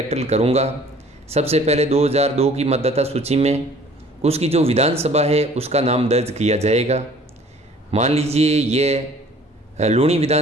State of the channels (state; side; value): normal; both; correlation 0.52